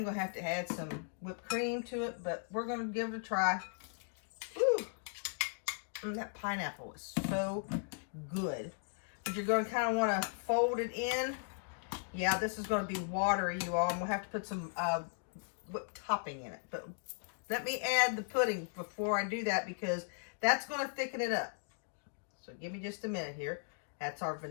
going to have to add some whipped cream to it. But we're going to give it a try. Woo! That pineapple is so good. But you're going to kind of want to fold it in. Yeah, this is going to be watery, you all. And we'll have to put some whipped topping in it. But let me add the pudding before I do that because that's going to thicken it up. So give me just a minute here. That's our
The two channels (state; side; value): silent; right; digital silence